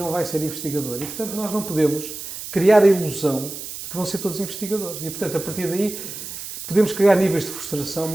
vai ser investigador e, portanto, nós não podemos criar a ilusão de que vão ser todos investigadores e, portanto, a partir daí podemos criar níveis de frustração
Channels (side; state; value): right; noise; hiss, 9 dB below the sound